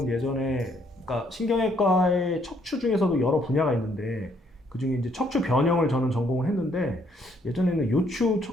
예전에 그러니까 신경외과의 척추 중에서도 여러 분야가 있는데 그 중에 이제 척추 변형을 저는 전공을 했는데 예전에는 요추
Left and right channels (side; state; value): both; normal; correlation 0.68